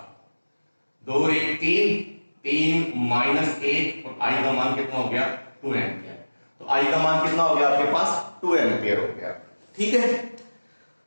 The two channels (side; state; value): both; inverted; correlation -1.00